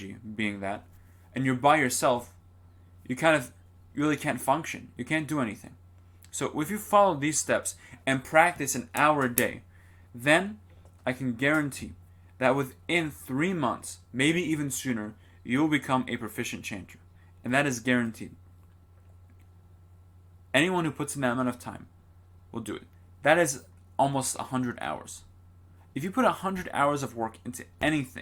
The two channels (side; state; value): both; identical; correlation 1.00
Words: being that, and you're by yourself, you really can't function. You can't do anything. So if you follow these steps and practice an hour a day, then I can guarantee that within 3 months, maybe even sooner, you will become a proficient chanter. And that is guaranteed. Anyone who puts in that amount of time will do it. That is almost 100 hours. If you put 100 hours of work into